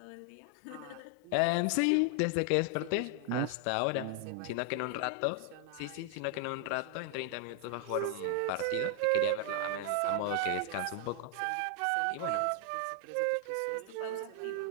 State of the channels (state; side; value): different; both; correlation 0.00